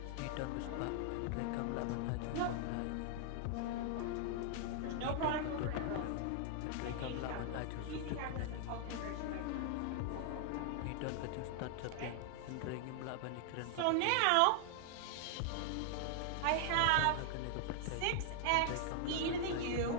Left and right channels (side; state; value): both; different; correlation 0.00